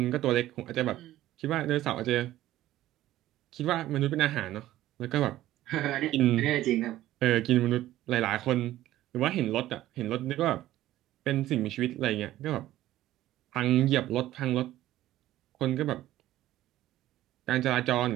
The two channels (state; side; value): quieter; left; 14.5 dB